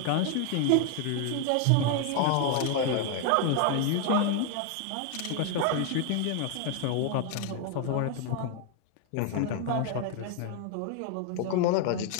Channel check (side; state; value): both; different; correlation 0.00